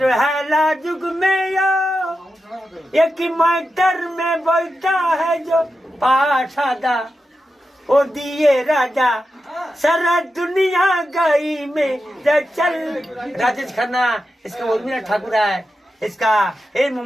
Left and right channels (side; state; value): both; normal; correlation 0.90